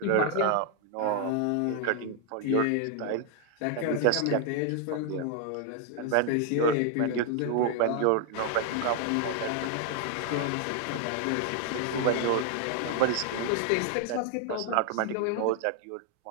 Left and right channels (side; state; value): both; different; correlation 0.00